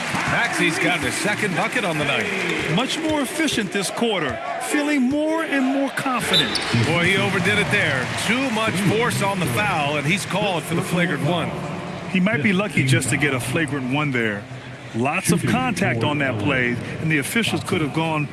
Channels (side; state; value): both; identical; correlation 1.00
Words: Maxey's got his second bucket on the night. Much more efficient this quarter. Feeling more and more confident. Boy, he overdid it there. Too much force on the foul, and he's called for the flagrant one. He might be lucky just to get a flagrant one there. Lots of contact on that play, and the officials could have gone